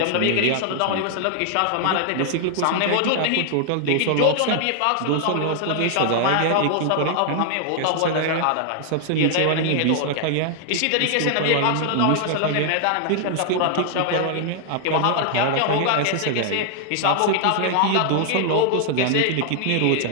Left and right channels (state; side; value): different; both; correlation 0.00